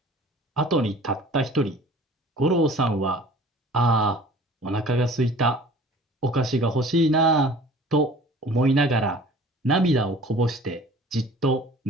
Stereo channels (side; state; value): both; normal; correlation 0.47